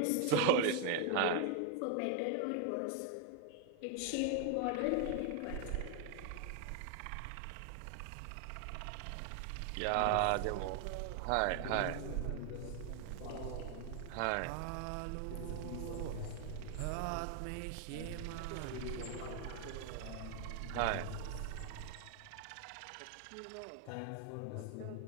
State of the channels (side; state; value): both; different; correlation 0.00